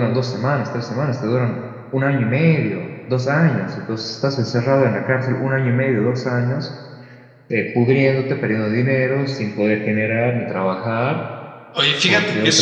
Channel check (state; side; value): identical; both; correlation 1.00